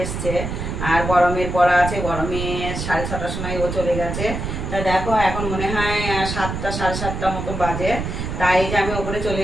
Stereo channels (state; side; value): noise; right; rumble, 4 dB below the sound